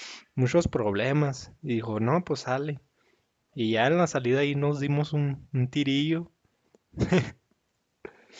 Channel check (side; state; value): both; identical; correlation 1.00